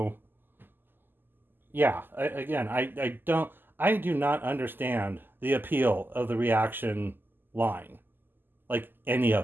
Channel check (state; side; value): late; left; 0.093 ms